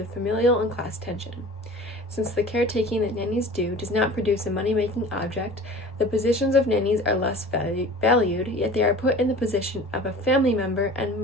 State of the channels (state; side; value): normal; both; correlation 0.41